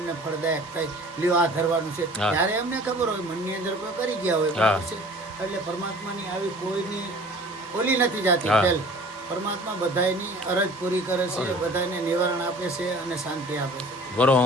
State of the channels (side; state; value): both; normal; correlation 0.47